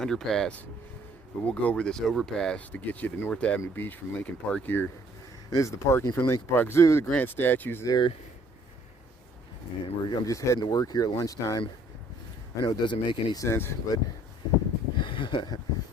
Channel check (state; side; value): normal; both; correlation 0.61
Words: But we'll go over this overpass to get you to North Avenue Beach from Lincoln Park here. And this is the parking for Lincoln Park Zoo. The Grant statue's there. And I'm just heading to work here at lunchtime. I know it doesn't make any sense, but